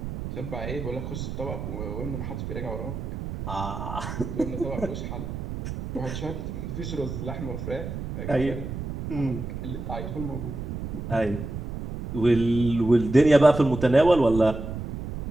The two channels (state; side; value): noise; right; rumble, 7 dB below the sound